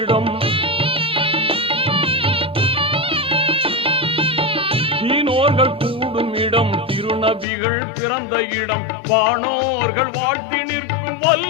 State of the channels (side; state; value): right; drops out; at 7.5 s